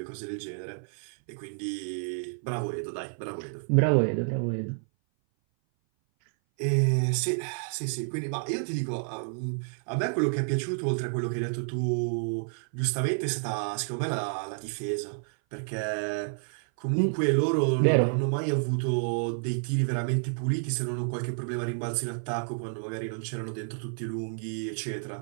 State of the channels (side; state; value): left; silent; 57 dB below the other